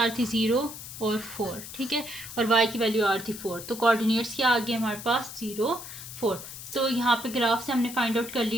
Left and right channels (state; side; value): noise; left; hiss, 12 dB below the sound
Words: आ रही थी 0 और 4, ठीक है, और वाई की वैल्यू आ रही थी 4। तो कोऑर्डिनेट्स क्या आ गए हमारे पास 0 4। तो यहाँ पे ग्राफ से हमने फाइंड आउट कर